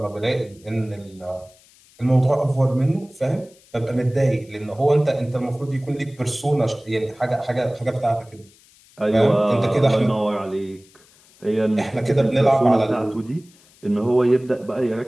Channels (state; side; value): noise; left; hiss, 28 dB below the sound